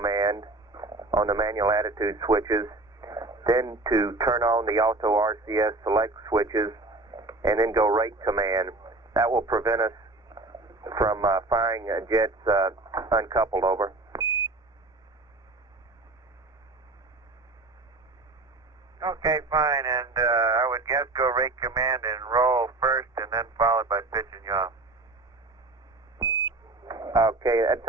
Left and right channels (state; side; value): quieter; left; 3.1 dB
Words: on the manual attitude switches, then to turn on the auto RCS select switches, and then go rate command. That will prevent us from firing jets uncoupled, over. Okay, fine, and I would guess go rate command and roll first and then followed by pitch and yaw. Okay, that